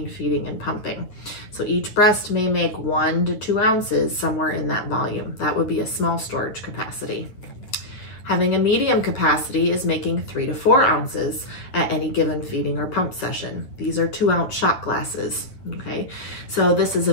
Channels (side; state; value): right; late; 9.5 ms